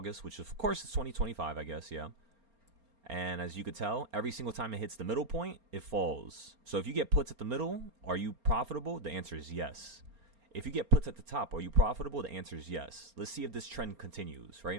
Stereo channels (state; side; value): late; left; 4.3 ms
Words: which of course is 2025, I guess, yeah. And as you could tell, every single time it hits the middle point, it falls. So if you get puts at the middle, are you profitable? The answer is yes. If you get puts at the top, are you profitable? The answer is yes. Let's see if this trend continues,